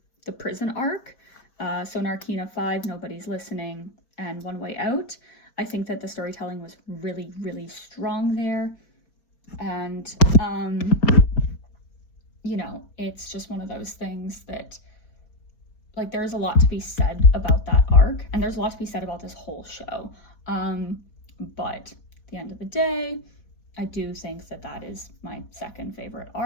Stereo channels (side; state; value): right; late; 4.5 ms